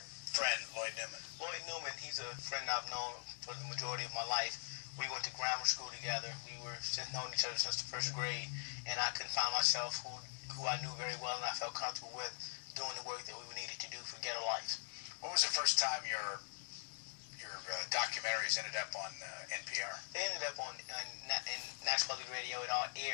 friend, Lloyd Newman? Lloyd Newman, he's a friend I've known for the majority of my life. We went to grammar school together. We were known each other since the first grade, and I couldn't find myself who I knew very well and I felt comfortable with doing the work that we needed to do for Ghetto Life. When was the first time your documentaries ended up on NPR? They ended up in National Public Radio. It all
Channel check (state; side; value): silent; right; digital silence